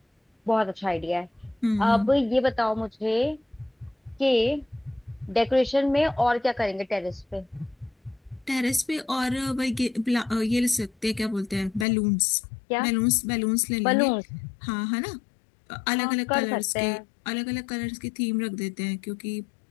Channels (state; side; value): drops out; right; at 11.9 s